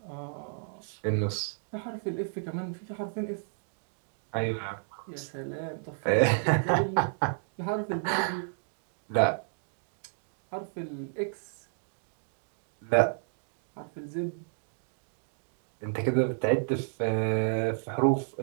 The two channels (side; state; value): left; silent; digital silence